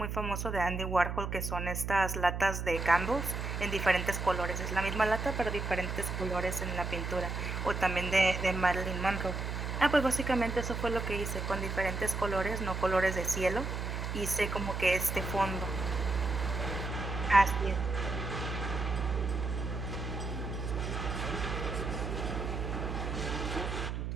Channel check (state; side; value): noise; right; hum, 3 dB below the sound